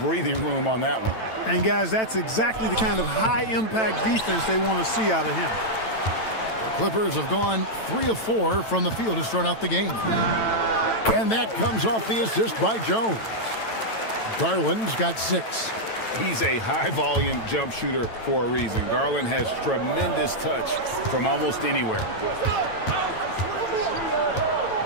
room on that one. And guys, that's exactly the kind of high-impact defense they want to see out of him. The Clippers have gone 3 of 4 from the field to start out the game. And that comes off the assist by Jones. Garland's got 6. He's a high-volume jump shooter for a reason. Garland has tremendous touch from almost anywhere.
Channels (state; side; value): late; right; 9.0 ms